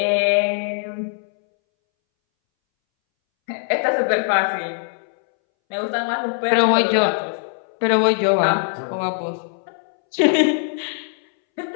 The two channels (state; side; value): silent; right; 63 dB below the other